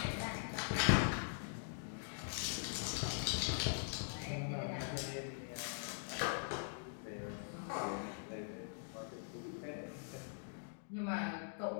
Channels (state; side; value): silent; right; digital silence